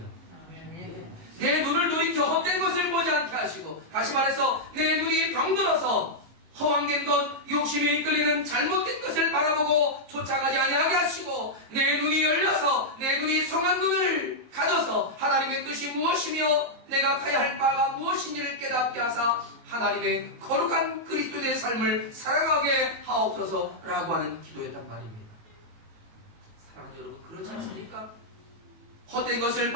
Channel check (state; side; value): late; left; 19 ms